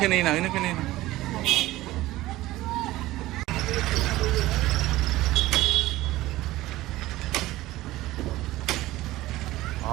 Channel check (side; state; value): left; quieter; 17.2 dB